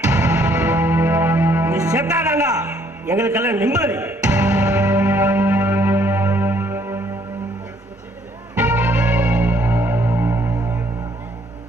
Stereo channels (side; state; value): both; normal; correlation 0.66